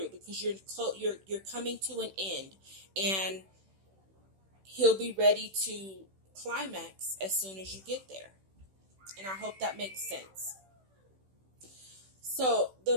because you're coming to an end, and he'll be ready to climax as soon as you get there. And I hope that makes sense. So the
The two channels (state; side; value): late; left; 16 ms